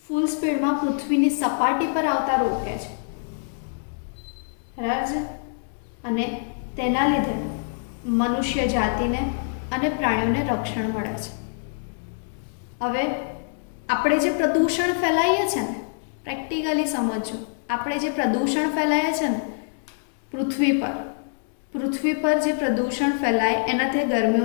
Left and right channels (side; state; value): right; silent; digital silence